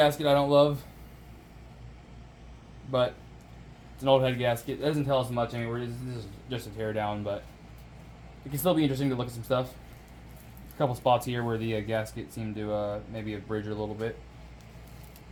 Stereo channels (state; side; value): identical; both; correlation 1.00